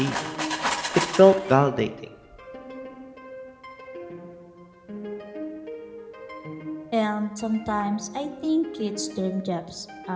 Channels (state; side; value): identical; both; correlation 1.00